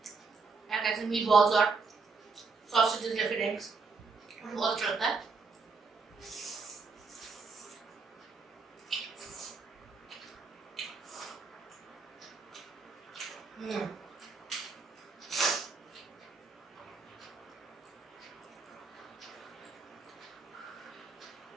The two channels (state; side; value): quieter; left; 4.5 dB